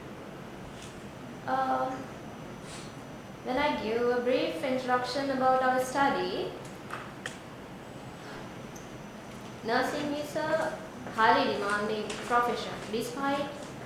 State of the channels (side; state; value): both; identical; correlation 1.00